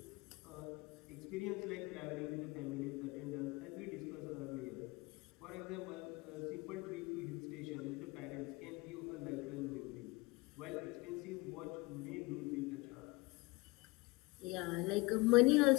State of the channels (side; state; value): right; quieter; 23.9 dB